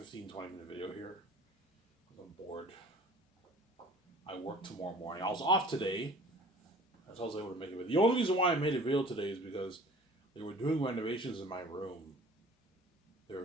15-20 minute video here. I'm bored. I work tomorrow morning. I was off today. So I was able to make a video. The only reason why I made a video today is because they were doing renovations in my room.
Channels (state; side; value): normal; both; correlation 0.48